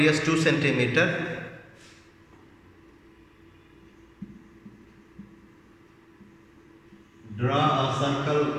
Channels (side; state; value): both; identical; correlation 1.00